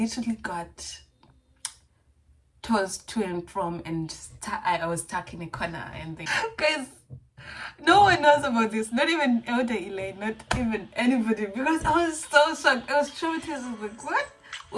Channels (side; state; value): both; identical; correlation 1.00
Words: got tossed to and from, and I was stuck in a corner. And guys, no one knows about this. Not even Elder Elaine, not even anybody. Because I was so shocked. I was traumatized. I was like, what?